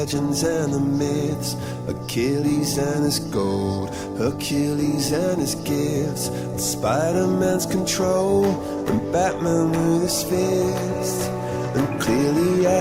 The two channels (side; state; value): both; identical; correlation 1.00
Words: and the myths, Achilles and his gold, Hercules and his gifts, Spider-Man's control, and Batman with his fists. And clearly